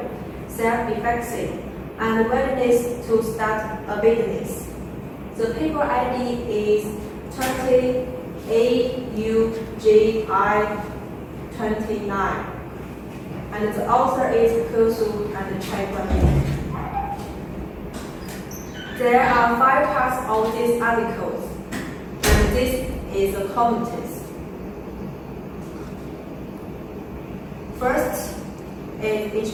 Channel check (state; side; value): identical; both; correlation 1.00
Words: Self-Efficacy, and Willingness to Start a Business. The paper ID is 20-AUGI-29, and the author is FoCos and Chae-Kwan Lim. There are 5 parts of this article, and this is the comments. First is